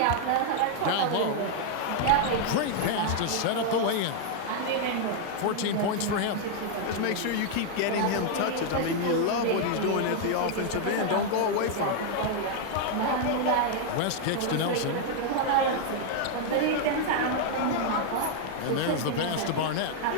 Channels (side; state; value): both; different; correlation 0.00